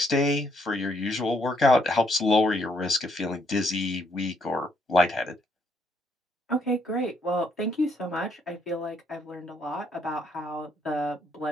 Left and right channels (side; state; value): both; normal; correlation 0.71